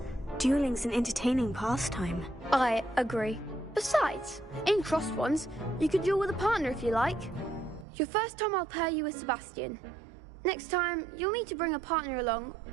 Dueling's an entertaining pastime. I agree. Besides, in crossed wands, you could duel with a partner if you like. Your first time I'll pair you with Sebastian. Next time, you'll need to bring a partner along,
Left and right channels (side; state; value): left; drops out; at 7.9 s